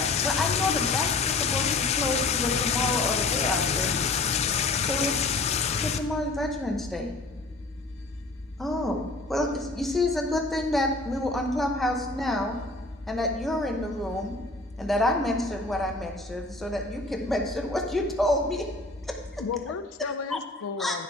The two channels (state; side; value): quieter; right; 3.1 dB